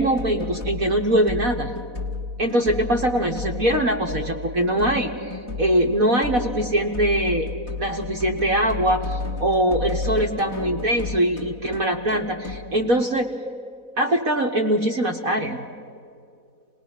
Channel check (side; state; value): left; late; 4.1 ms